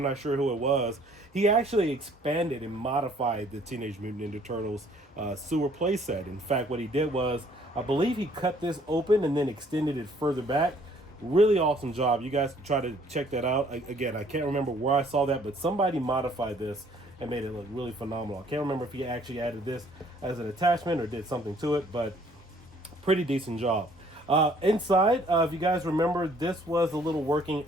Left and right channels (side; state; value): both; normal; correlation 0.60